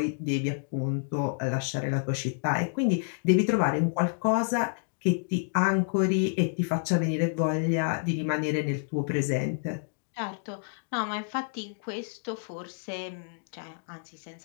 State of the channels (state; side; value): silent; right; digital silence